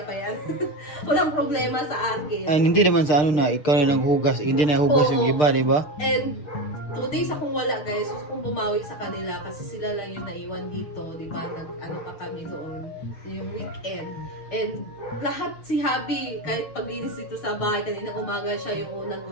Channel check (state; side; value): late; right; 6.5 ms